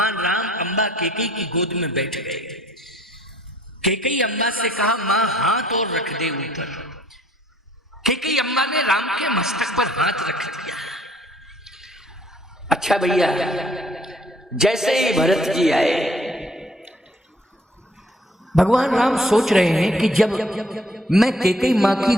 राम अम्बा केकई की गोद में बैठ गए। केकई अम्बा से कहा मां हाथ और रख दे ऊपर। केकई अम्बा ने राम के मस्तक पर हाथ रख दिया। अच्छा भैया, जैसे ही भरत जी आए, भगवान राम सोच रहे हैं कि जब मैं केकई मां की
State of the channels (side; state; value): both; normal; correlation 0.60